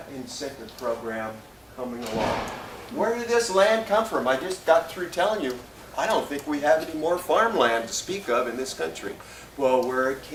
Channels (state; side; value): identical; both; correlation 1.00